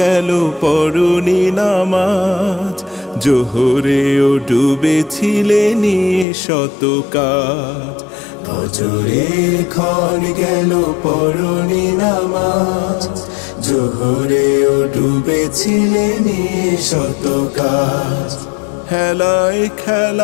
পড়নি নামাজ, জোহরেও ডুবেছিলে নিয়ে শত কাজ। ফজরের ক্ষণ গেল পড়নি নামাজ, জোহরেও ডুবেছিলে নিয়ে শত কাজ। হেলায়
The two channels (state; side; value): drops out; right; at 6.2 s